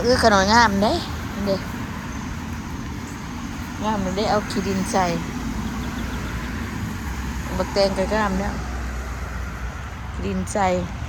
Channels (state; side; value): identical; both; correlation 1.00